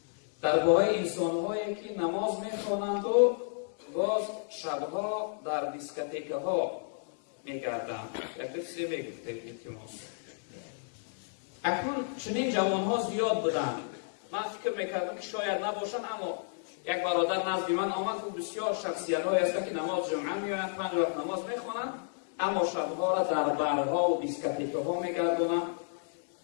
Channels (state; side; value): silent; right; digital silence